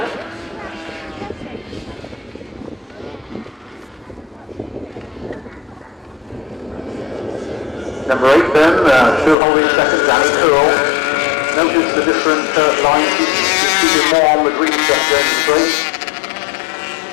Number 8 then, still holding second, Danny Curl. Notice the different lines, keeping more on the green stuff going straight.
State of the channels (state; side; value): drops out; right; at 9.3 s